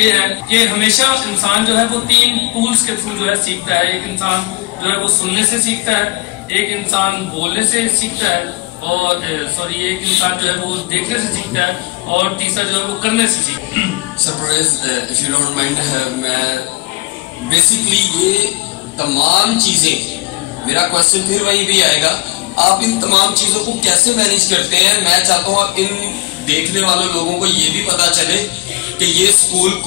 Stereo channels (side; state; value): right; quieter; 23.4 dB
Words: ہے کہ ہمیشہ انسان جو ہے وہ 3 ٹولز کے تھرو جو ہے سیکھتا ہے. ایک انسان جو ہے وہ سننے سے سیکھتا ہے، ایک انسان بولنے سے سیکھتا ہے، اور ایک انسان جو ہے وہ دیکھنے سے سیکھتا ہے، اور تیسرا جو ہے وہ کرنے سے سیکھتا ہے. Surprise if you don't mind, میں بیسیکلی یہ تمام چیزیں، میرا کوشچن پھر وہی بھی آئے گا، آپ ان تمام چیزوں کو کیسے مینیج کرتے ہیں؟ میں چاہتا ہوں آپ ان دیکھنے والے لوگوں کو یہ بھی پتا چلے کہ یہ اسکول